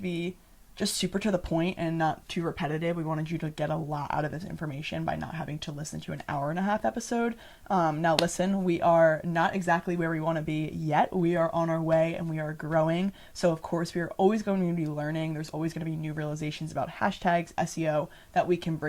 be just super to the point and not too repetitive. We wanted you to get a lot out of this information by not having to listen to an 1.5-hour episode. Now listen, we are not exactly where we want to be yet. We are on our way and we are growing. So of course we are always going to be learning. There's always going to be new realizations about hashtags, SEO that we can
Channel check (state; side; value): identical; both; correlation 1.00